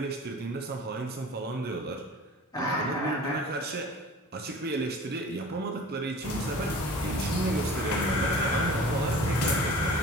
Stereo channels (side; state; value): both; normal; correlation 0.42